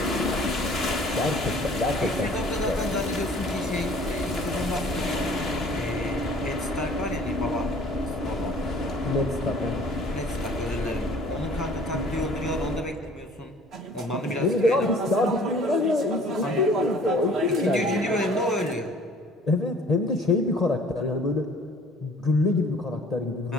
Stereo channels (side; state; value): both; normal; correlation 0.52